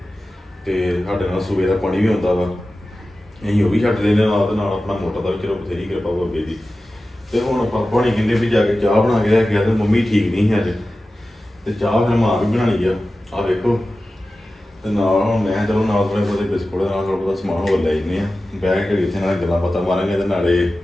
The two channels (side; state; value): both; normal; correlation 0.95